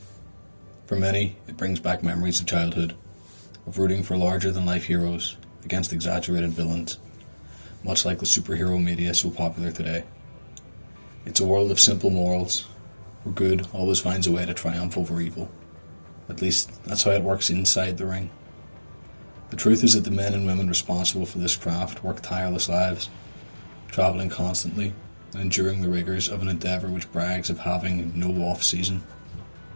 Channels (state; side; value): inverted; both; correlation -1.00